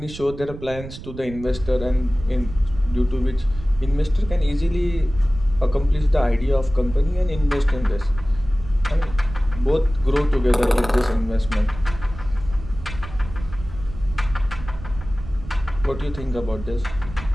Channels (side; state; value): right; noise; rumble, 12 dB below the sound